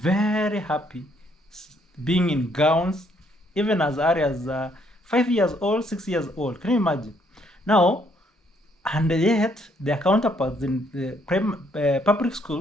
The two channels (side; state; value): both; normal; correlation 0.69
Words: happy being in gowns, even as early as 5 years old, 6 years old. Can you imagine? Now, and yet their counterparts in the public